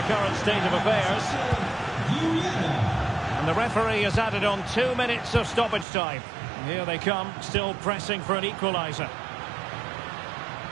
current state of affairs. And the referee has added on 2 minutes of stoppage time. And here they come, still pressing for an equaliser.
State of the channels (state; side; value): drops out; left; at 5.9 s